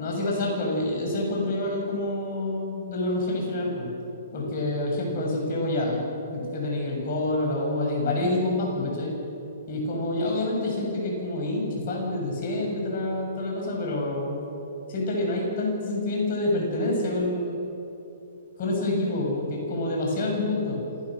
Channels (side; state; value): both; inverted; correlation -0.41